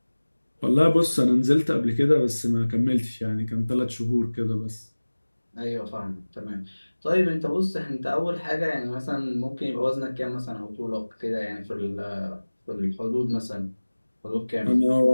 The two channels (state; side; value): inverted; both; correlation -1.00